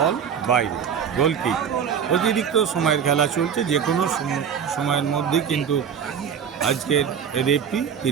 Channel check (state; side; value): quieter; left; 7.7 dB